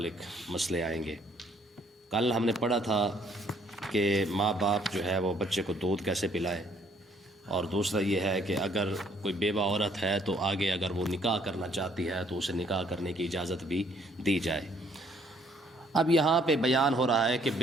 مسئلے آئیں گے۔ کل ہم نے پڑھا تھا کہ ماں باپ جو ہے وہ بچے کو دودھ کیسے پلائے، اور دوسرا یہ ہے کہ اگر کوئی بیوہ عورت ہے تو آگے اگر وہ نکاح کرنا چاہتی ہے تو اسے نکاح کرنے کی اجازت بھی دی جائے۔ اب یہاں پہ بیان ہو رہا ہے کہ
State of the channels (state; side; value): normal; both; correlation 0.64